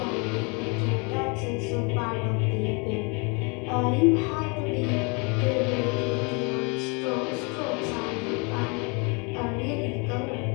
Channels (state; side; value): quieter; right; 32.3 dB